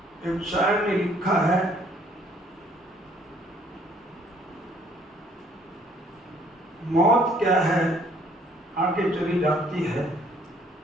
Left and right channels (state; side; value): normal; both; correlation 0.62